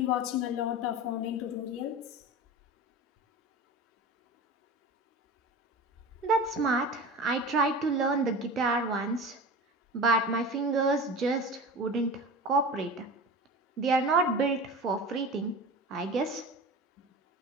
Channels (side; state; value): both; normal; correlation 0.32